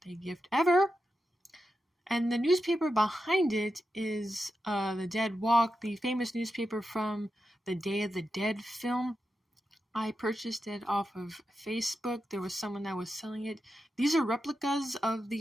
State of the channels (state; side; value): normal; both; correlation 0.89